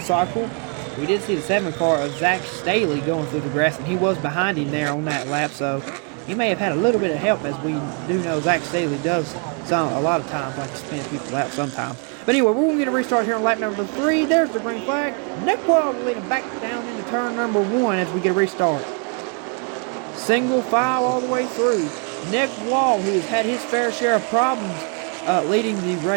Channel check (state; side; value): quieter; left; 36.6 dB